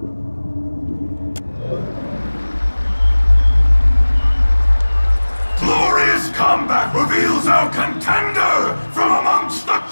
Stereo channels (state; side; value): inverted; both; correlation -1.00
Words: Reveals our contender from amongst the